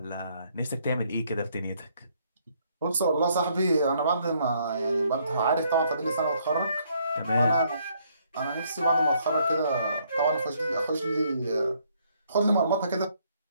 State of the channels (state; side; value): inverted; both; correlation -0.69